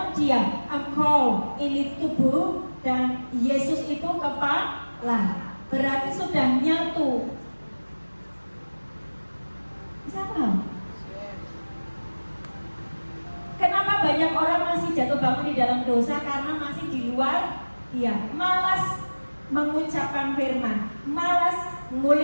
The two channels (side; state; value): both; inverted; correlation -1.00